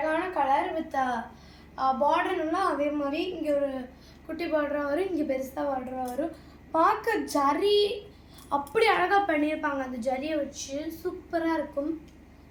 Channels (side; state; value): both; identical; correlation 1.00